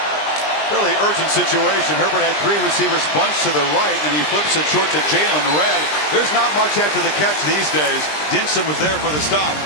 fairly urgent situation. Herbert had 3 receivers bunched to the right, and he flips it short to Jalen Redd. There's not much after the catch these days. Dinson was there for the stop.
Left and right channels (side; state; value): right; late; 20 ms